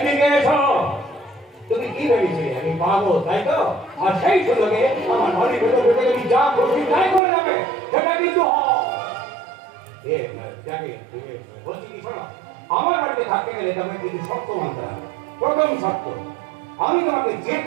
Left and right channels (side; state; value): left; drops out; at 7.2 s